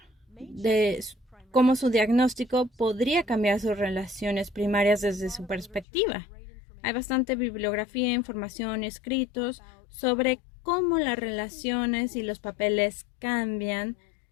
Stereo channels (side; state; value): right; drops out; at 5.9 s